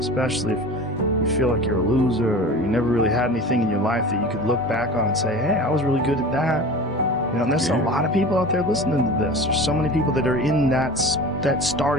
if you feel like you're a loser or you never really had anything in your life that you could look back on and say, hey, I was really good at that. You know, and there's a lot of people out there listening to this. There's so many people that are in that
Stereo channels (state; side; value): normal; both; correlation 0.36